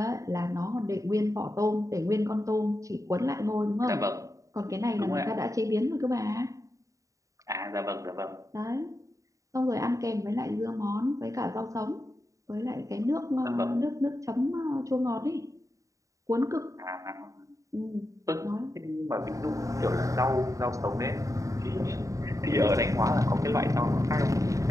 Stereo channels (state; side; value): late; left; 0.16 ms